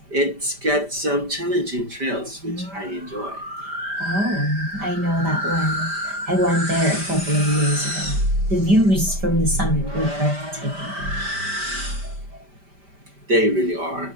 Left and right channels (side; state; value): left; late; 5.1 ms